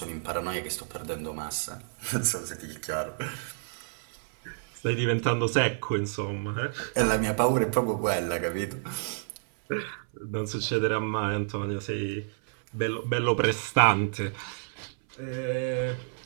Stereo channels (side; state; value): left; silent; 57 dB below the other